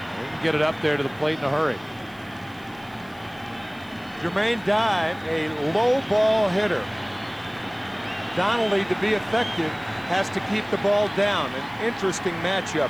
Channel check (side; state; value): right; noise; hiss, 28 dB below the sound